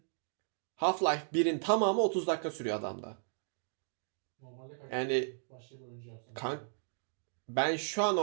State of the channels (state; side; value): silent; left; digital silence